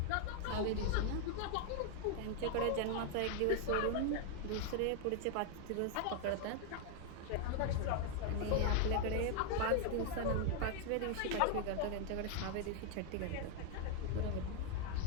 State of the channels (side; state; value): both; different; correlation 0.00